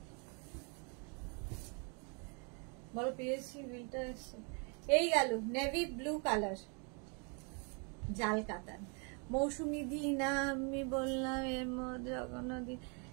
বলো পেয়েছি, বিলটা এসছে। এই গেল নেভি ব্লু কালার, জাল কাতান। মৌসুমী দি না, আমি বললাম এর মধ্যে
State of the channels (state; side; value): quieter; left; 36.3 dB